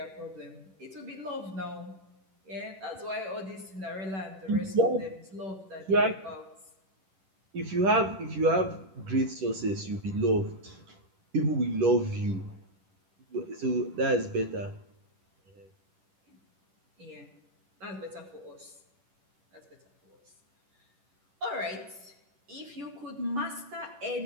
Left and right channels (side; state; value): left; late; 10 ms